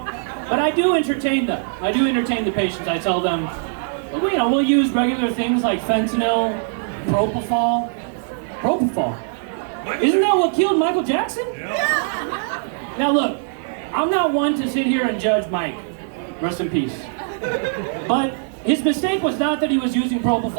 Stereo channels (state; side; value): silent; left; 55 dB below the other